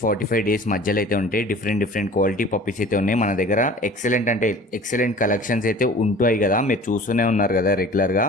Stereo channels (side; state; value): both; normal; correlation 0.44